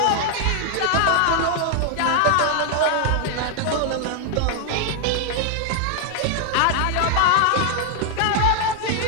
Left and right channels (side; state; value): both; different; correlation 0.00